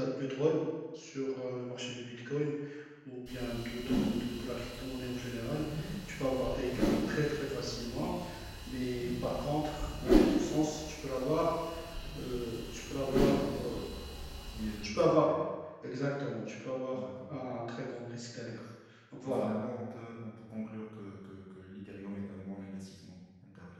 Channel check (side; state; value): both; identical; correlation 1.00